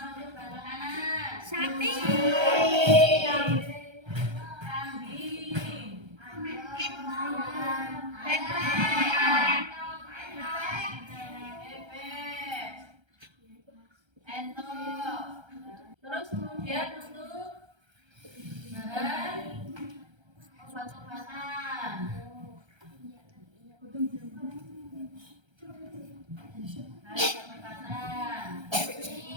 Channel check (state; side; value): late; left; 1.3 ms